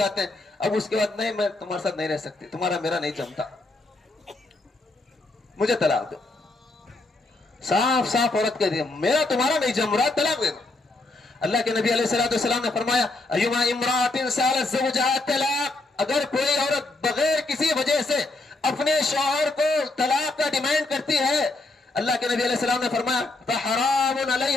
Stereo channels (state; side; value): quieter; right; 3.1 dB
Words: ہیں، اب اس کے بعد نہیں میں تمہارے ساتھ نہیں رہ سکتی، تمہارا میرا نہیں جمتا، مجھے طلاق دو۔ صاف صاف عورت کہہ دی میرا تمہارا نہیں جم رہا، طلاق دے دو۔ اللہ کے نبی علیہ الصلوۃ والسلام نے فرمایا ایما امرأۃ سالت زوجہا طلاق، اگر کوئی عورت بغیر کسی وجہ سے اپنے شوہر کو طلاق کا ڈیمانڈ کرتی ہے، اللہ کے نبی علیہ السلام نے فرمایا فحرام